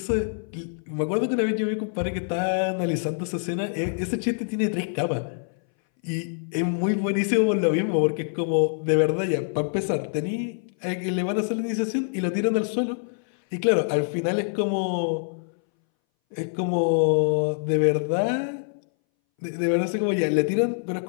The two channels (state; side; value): silent; right; 61 dB below the other